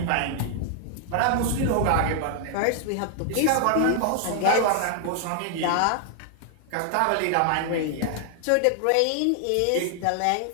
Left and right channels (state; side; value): different; both; correlation 0.00